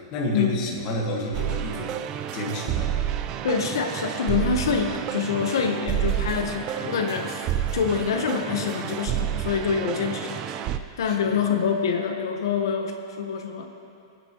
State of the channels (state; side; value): normal; both; correlation -0.18